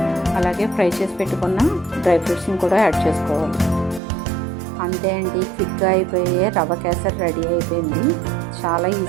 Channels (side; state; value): left; drops out; at 4.0 s